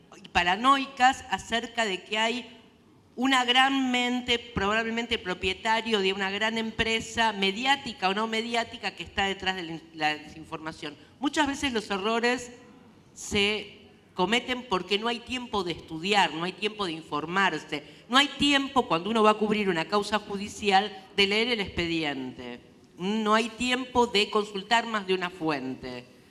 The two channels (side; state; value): both; identical; correlation 1.00